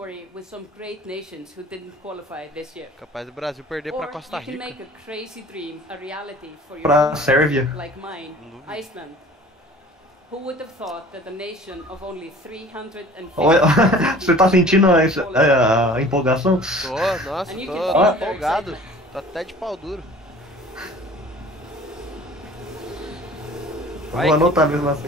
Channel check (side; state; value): both; normal; correlation 0.47